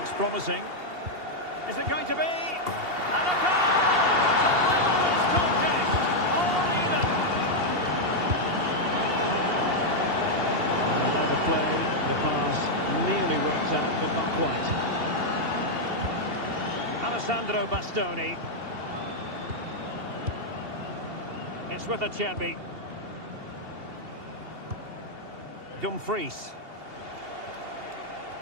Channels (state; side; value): late; left; 2.8 ms